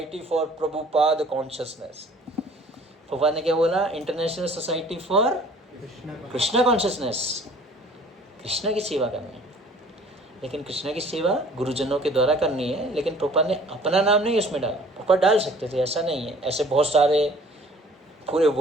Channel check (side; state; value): both; normal; correlation 0.52